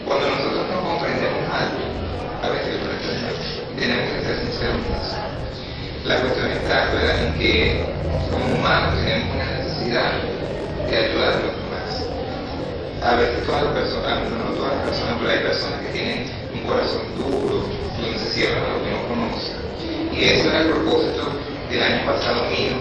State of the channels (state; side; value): identical; both; correlation 1.00